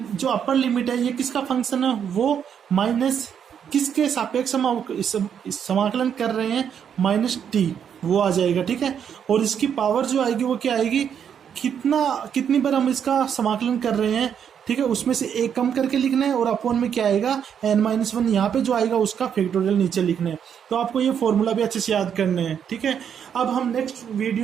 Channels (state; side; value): quieter; left; 8.2 dB